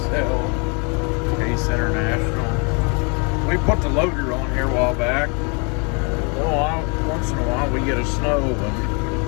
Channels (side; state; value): right; quieter; 34.1 dB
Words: Case International. We put the loader on here a while back. Once in a while we get a snow and